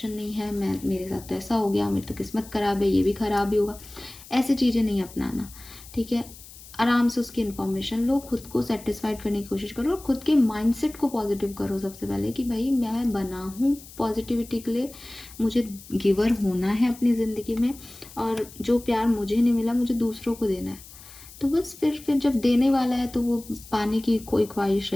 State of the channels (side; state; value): left; noise; hiss, 19 dB below the sound